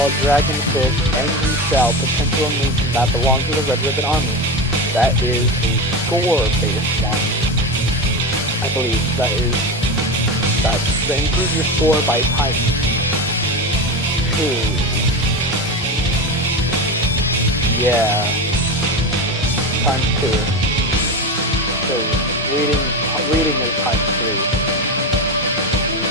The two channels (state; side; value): normal; both; correlation 0.22